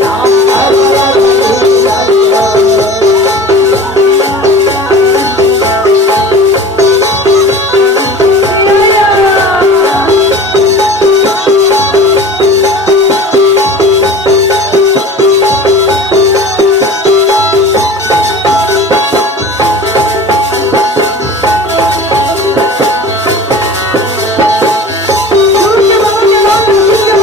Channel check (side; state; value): both; normal; correlation 0.39